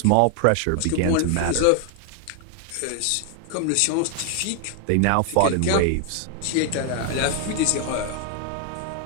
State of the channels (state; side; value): different; both; correlation 0.00